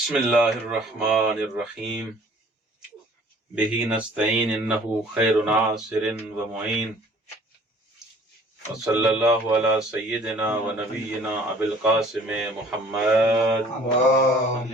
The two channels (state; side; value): normal; both; correlation 0.53